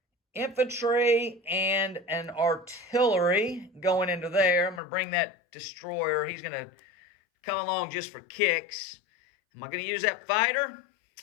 infantry and an artillery going into there. I'm going to bring that destroyer. He's going to come along just for kicks. Am I going to use that fighter?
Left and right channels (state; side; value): drops out; right; at 4.8 s